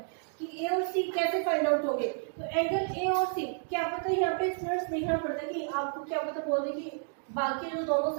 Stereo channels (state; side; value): silent; left; 57 dB below the other